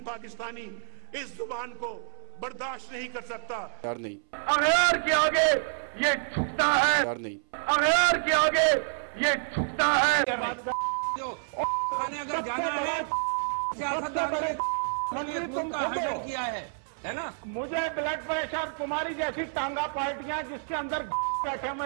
पाकिस्तानी इस जुबान को बर्दाश्त नहीं कर सकता। यार नहीं, अगैर के आगे ये झुकता है। यार नहीं, अगैर के आगे ये झुकता है। अगर जाना है किया है ना। मुझे ब्लड प्रेशर, तुम्हारी जैसी टांगा पार्टियां जिसके अंदर बैठे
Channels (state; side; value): silent; left; 59 dB below the other